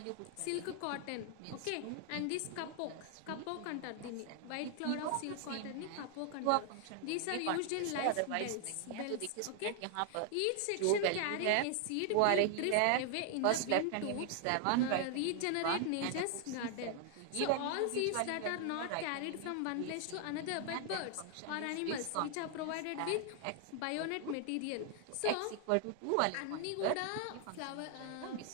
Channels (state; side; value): different; both; correlation 0.00